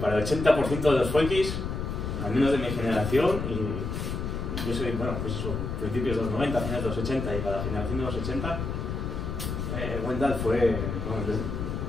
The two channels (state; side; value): noise; left; rumble, 4 dB below the sound